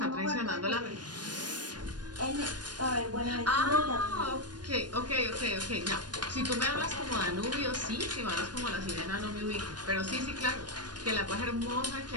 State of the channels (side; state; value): left; late; 0.69 ms